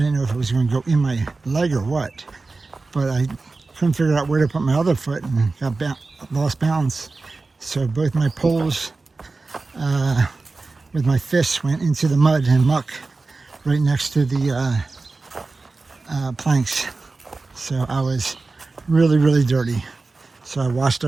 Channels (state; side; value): quieter; left; 3.7 dB